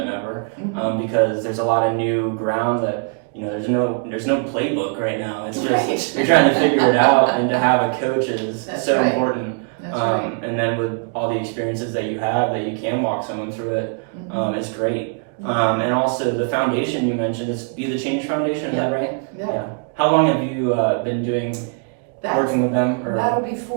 ever, because there's a lot of new ground that, there's no playbook right now. It's just you're trying to figure it out, and to have a coach is important. That's right. And then with all the experiences that you have, that you can walk someone through it, it's great. And also the foundation you mentioned is Be the Change Foundation, is that right? Yeah. How long have you been working with them? Or? That'll be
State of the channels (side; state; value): left; quieter; 39.8 dB